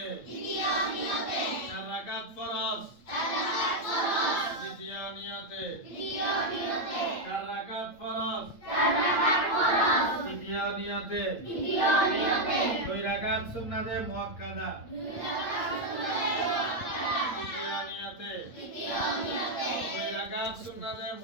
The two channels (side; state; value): right; late; 8.8 ms